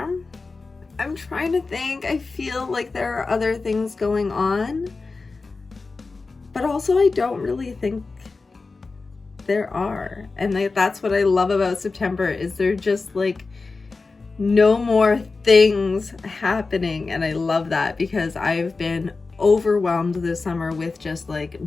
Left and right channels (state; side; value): quieter; right; 4.0 dB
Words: I'm trying to think. I feel like there are other things going on, but also I don't really think there are. And that's what I love about September, is there just like no more things happening. And I love that, because I've been overwhelmed this summer with just like